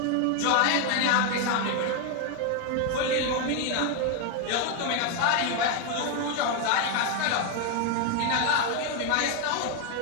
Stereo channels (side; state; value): both; different; correlation 0.01